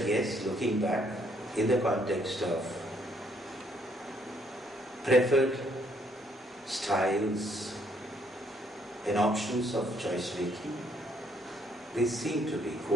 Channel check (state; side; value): normal; both; correlation 0.69